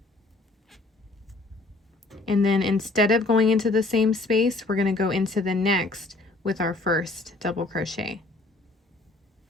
and then instead of going into the same space, we're going to go into the next with our first double crochet.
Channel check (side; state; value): right; quieter; 3.0 dB